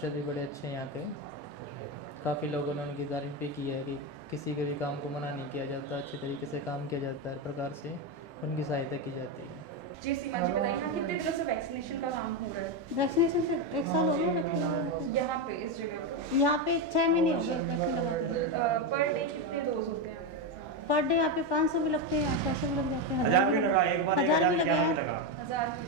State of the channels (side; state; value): both; normal; correlation 0.09